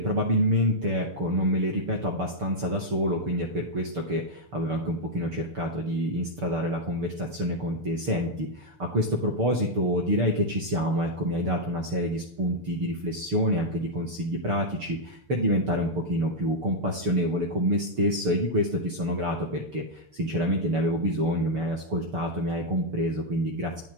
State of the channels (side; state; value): left; late; 6.7 ms